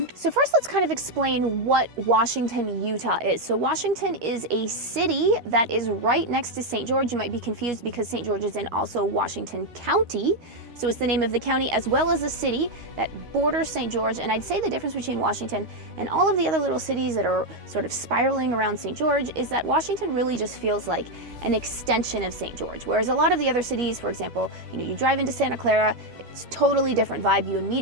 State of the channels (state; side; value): late; left; 13 ms